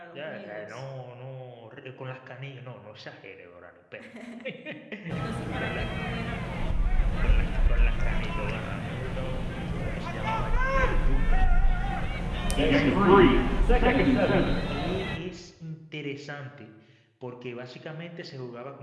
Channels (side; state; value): both; identical; correlation 1.00